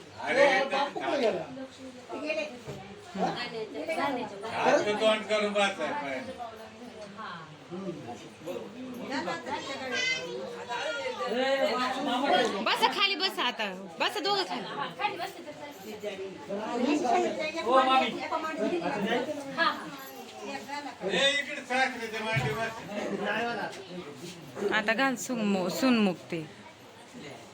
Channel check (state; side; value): identical; both; correlation 1.00